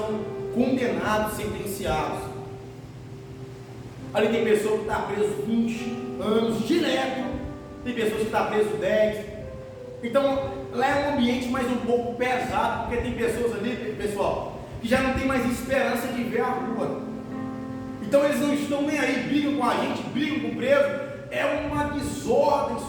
condenados, sentenciados. Ali tem pessoa que está preso 20 anos direto, tem pessoas que estão preso 10. Então lá é um ambiente mais um pouco pesado, porque tem pessoas ali, pessoal, que já não tem mais esperança de ver a rua. Então eles não estão nem aí, brigam com a gente, brigam com o preso, é uma desordem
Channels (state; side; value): identical; both; correlation 1.00